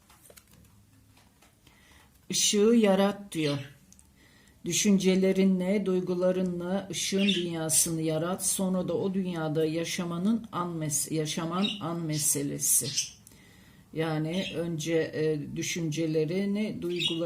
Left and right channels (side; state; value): both; identical; correlation 1.00